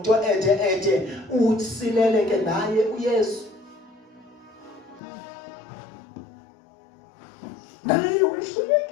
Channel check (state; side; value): drops out; right; at 5.0 s